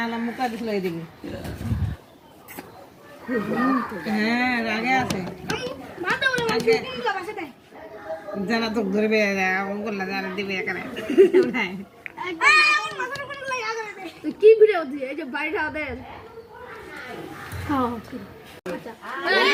মুখা দিছিল এদিকে। হ্যাঁ, রাগে আছে। জানা তো ধরবে, করলে জানা দিবে এখানে। কি ভিডিও দিয়ে এই যে বাইরে ওদের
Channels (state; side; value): identical; both; correlation 1.00